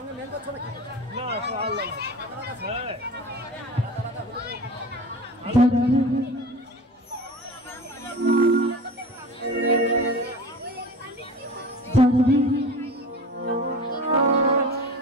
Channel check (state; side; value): normal; both; correlation 0.35